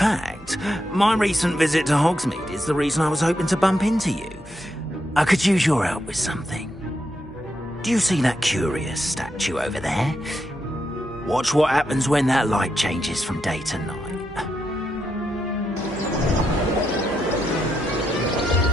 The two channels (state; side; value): normal; both; correlation 0.83